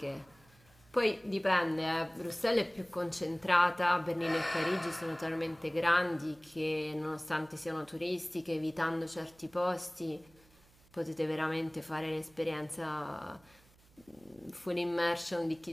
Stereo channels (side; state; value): right; noise; hum, 29 dB below the sound